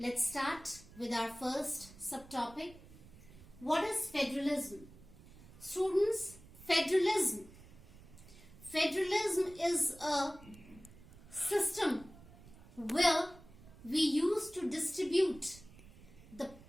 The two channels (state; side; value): noise; right; rumble, 20 dB below the sound